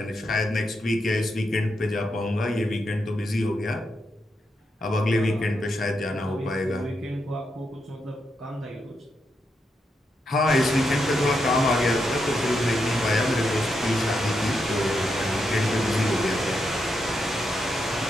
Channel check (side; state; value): both; normal; correlation 0.83